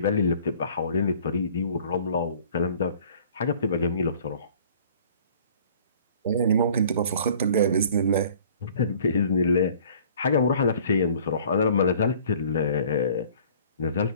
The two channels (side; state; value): both; inverted; correlation -0.51